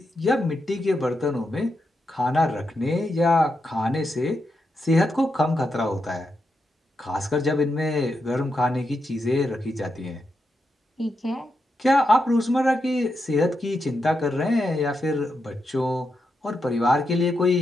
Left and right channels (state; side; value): normal; both; correlation 0.85